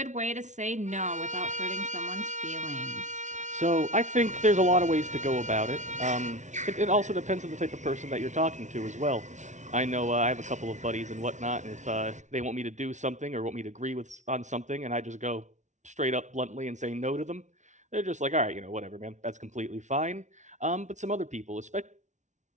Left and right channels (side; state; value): left; late; 0.35 ms